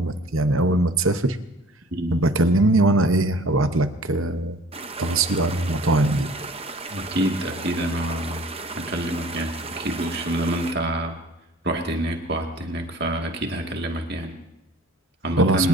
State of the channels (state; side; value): normal; both; correlation 0.49